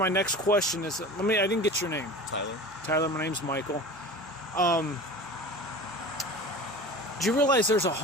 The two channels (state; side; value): normal; both; correlation 0.36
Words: next question is... I didn't get your name. Tyler. Tyler, my name's Michael. Do you realize there's